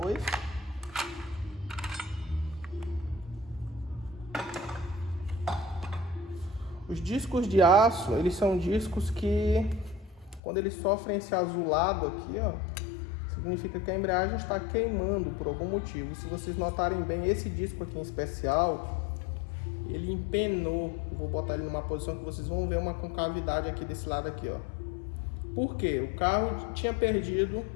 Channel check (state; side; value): drops out; right; at 10.4 s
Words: Os discos de aço, eles são discos que, quando eles sofrem esse azulado aqui, ó, significa que a embreagem está queimando por algum motivo. Se vocês notarem bem, esse disco aqui em especial, ele empenou. Vou botar ele numa posição que vocês vão ver uma concavidade aqui desse lado aqui, ó. Por quê? O carro tinha perdido